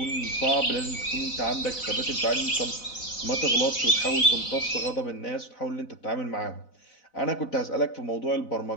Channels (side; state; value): right; late; 4.0 ms